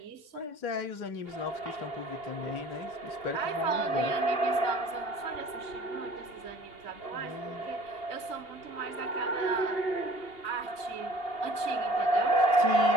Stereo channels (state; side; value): late; right; 2.5 ms